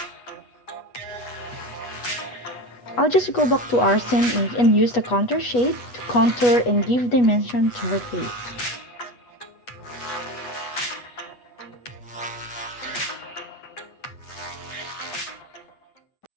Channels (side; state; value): right; late; 8.2 ms